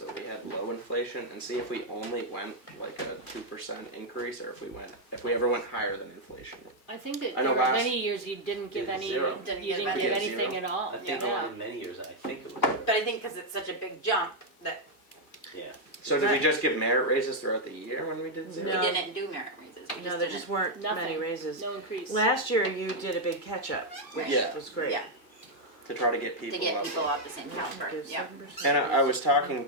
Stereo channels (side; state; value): right; late; 2.4 ms